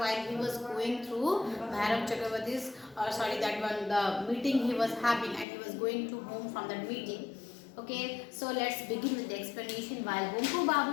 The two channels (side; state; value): right; drops out; at 5.5 s